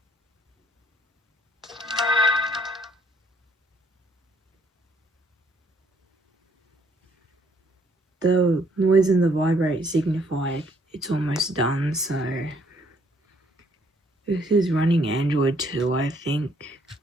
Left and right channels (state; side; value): normal; both; correlation 0.66